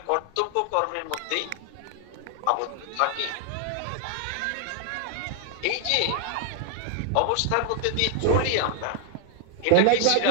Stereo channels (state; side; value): different; both; correlation 0.00